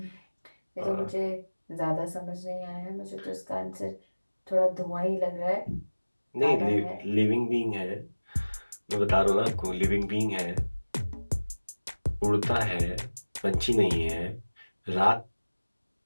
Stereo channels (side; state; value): both; inverted; correlation -1.00